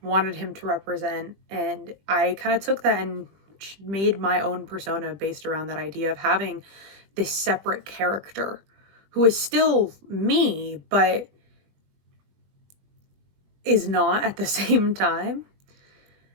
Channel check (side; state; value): left; late; 20 ms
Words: wanted him to represent. And I kind of took that and made my own persona based around that idea of having this separate character who is still me, but is not at the same time.